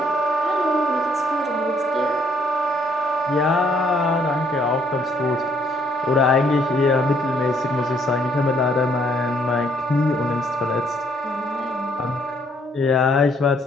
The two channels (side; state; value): both; normal; correlation 0.67